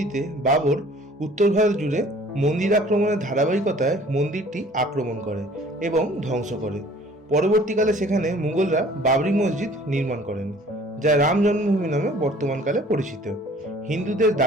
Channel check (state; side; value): normal; both; correlation 0.52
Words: বাবর উত্তর ভারত জুড়ে মন্দির আক্রমণের ধারাবাহিকতায় মন্দিরটি আক্রমণ করে এবং ধ্বংস করে। পরবর্তীকালে সেখানে মুঘলরা বাবরি মসজিদ নির্মাণ করেন, যা রাম জন্মভূমি নামে বর্তমানকালে পরিচিত। হিন্দুদের